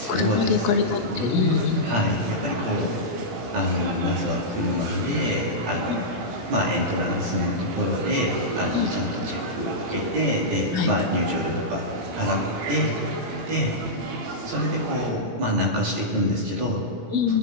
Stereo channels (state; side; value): late; left; 17 ms